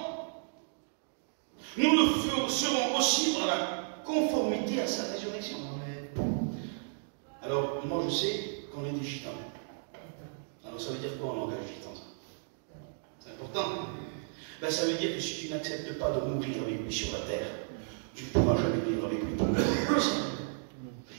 nous le serons aussi par la conformité à sa résurrection. Alors, moi je sais qu'on est des gitans. Alors ça veut dire quoi en langage gitan? C'est important. Ben, ça veut dire que si tu n'acceptes pas de mourir avec lui sur la terre, tu ne pourras jamais vivre avec lui.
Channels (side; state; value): left; silent; digital silence